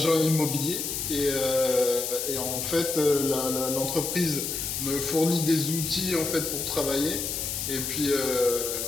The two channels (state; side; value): noise; left; hiss, 3 dB below the sound